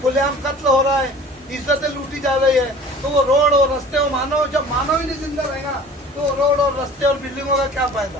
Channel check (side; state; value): both; normal; correlation 0.45